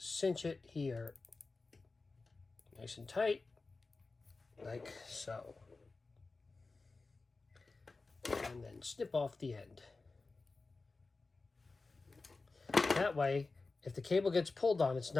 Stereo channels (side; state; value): right; quieter; 3.8 dB